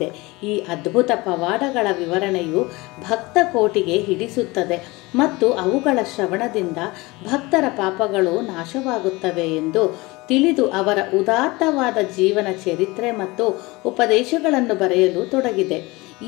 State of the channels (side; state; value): right; quieter; 22.8 dB